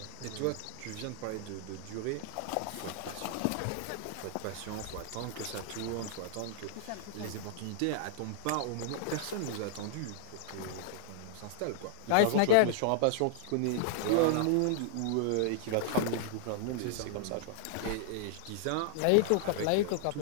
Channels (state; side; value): different; both; correlation -0.01